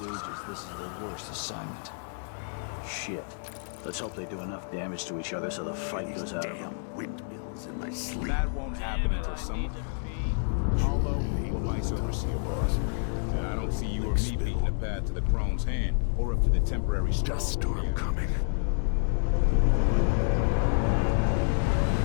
This is the worst assignment. Shit. Let's hope they do enough damage to each other so the fight goes out. Damn windmills in my sleep. That won't happen until someone manages to fulfill vice overseer boss. I don't see you or me beating the path to the Crone's hand, or up to the temporary Dust storm coming.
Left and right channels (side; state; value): right; silent; digital silence